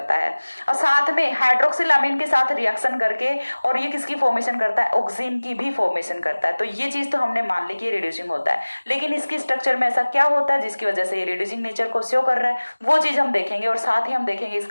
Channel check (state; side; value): inverted; both; correlation -1.00